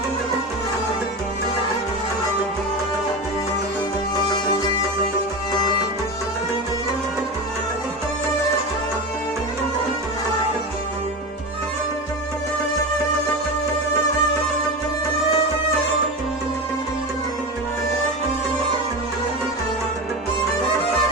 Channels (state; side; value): normal; both; correlation 0.23